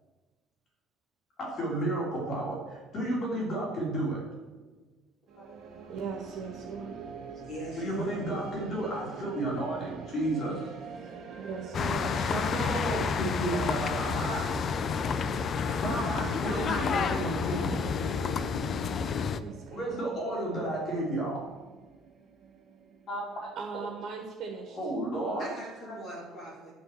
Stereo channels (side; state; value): both; normal; correlation 0.57